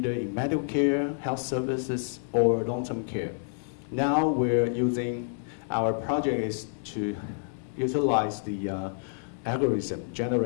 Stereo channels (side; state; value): right; silent; 58 dB below the other